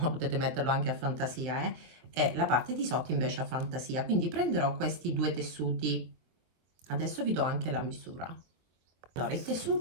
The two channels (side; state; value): left; late; 23 ms